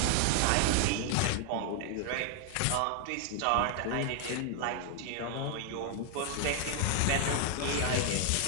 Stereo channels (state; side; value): different; both; correlation 0.00